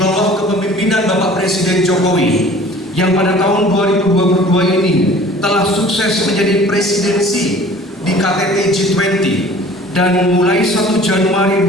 kepemimpinan Bapak Presiden Jokowi yang pada tahun 2022 ini telah sukses menjadi presidensi di KTT G20, dan mulai 1 Januari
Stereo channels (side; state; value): both; normal; correlation 0.48